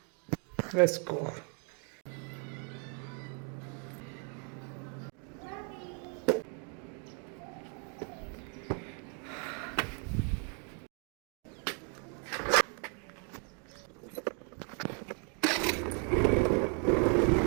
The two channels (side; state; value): left; quieter; 39.2 dB